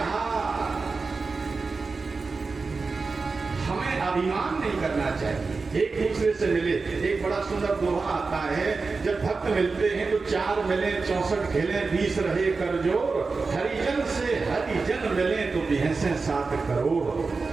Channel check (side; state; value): left; quieter; 4.2 dB